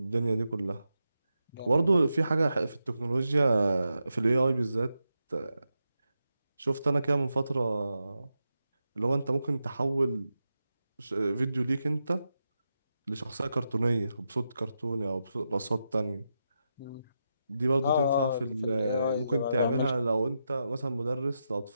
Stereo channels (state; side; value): inverted; both; correlation -0.87